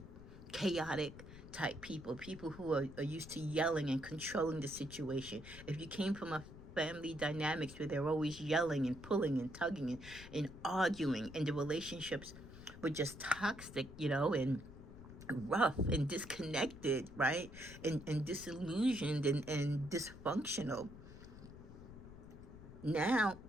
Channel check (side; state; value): left; noise; rumble, 15 dB below the sound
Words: chaotic type people who are used to yelling and controlling the situation. If you came from a family dynamics where they're always yelling and pulling and tugging and arguing, and the relationships were just toxic, and rough and disconnected, right? And disillusioned and dysfunctional. Now,